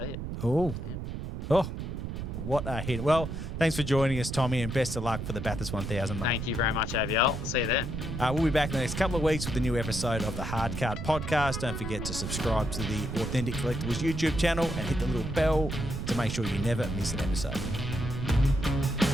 it. Oh, what a hit! Well, thanks for joining us, Tommy, and best of luck for the Bathurst 1000. Mate. Thank you very much, AVL. See you then. We'll be back in the next couple of weeks with a new episode of the Hard Card Podcast. Don't forget to subscribe to the Authentic Collectables YouTube channel and hit the little bell to make sure you never miss an episode.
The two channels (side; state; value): right; noise; rumble, 5 dB below the sound